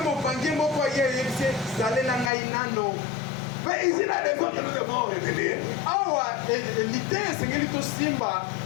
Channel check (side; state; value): right; drops out; at 2.3 s